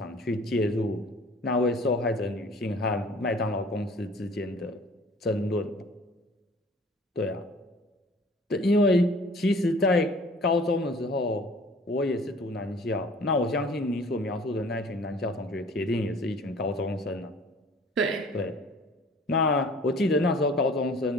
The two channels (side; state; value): both; normal; correlation 0.50